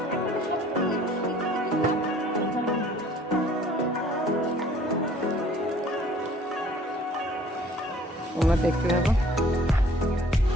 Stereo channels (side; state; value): both; normal; correlation 0.54